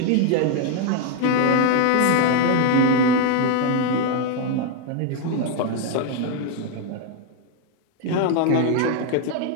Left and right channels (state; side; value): different; both; correlation 0.01